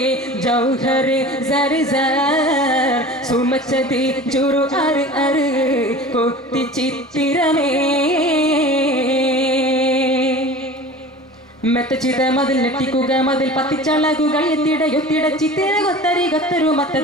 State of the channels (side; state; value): both; normal; correlation 0.39